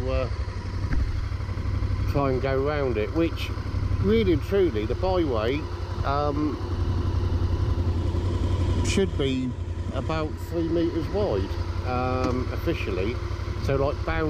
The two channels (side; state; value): both; identical; correlation 1.00